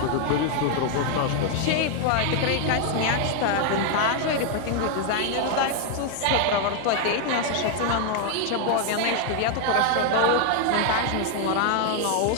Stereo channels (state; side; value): different; both; correlation 0.00